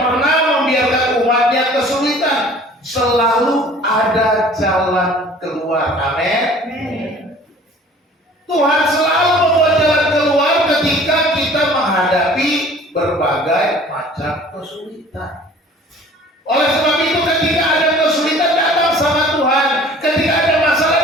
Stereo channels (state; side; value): normal; both; correlation 0.49